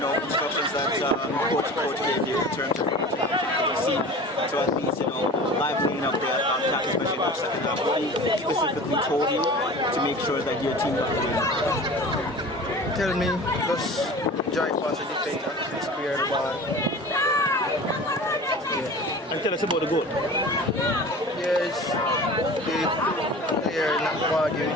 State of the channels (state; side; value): normal; both; correlation 0.38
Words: that coach gave you in terms of you see to at least livening up the attack, especially in the second half. What he specifically told you to make sure that your team got the win? Tell me, just drive past the defender, clear the ball. Yeah. And tell us about the goal. Yes, the player not